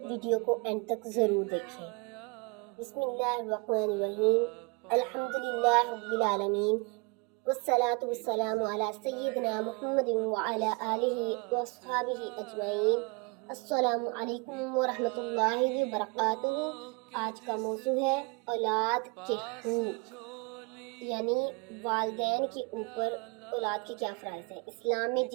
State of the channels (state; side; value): quieter; left; 30.0 dB